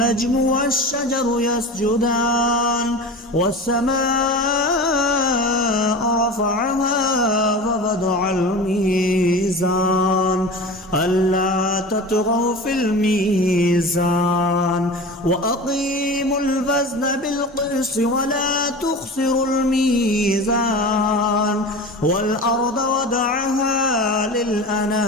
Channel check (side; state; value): both; normal; correlation 0.33